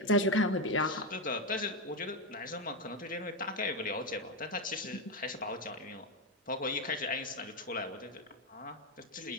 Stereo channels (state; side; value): normal; both; correlation 0.08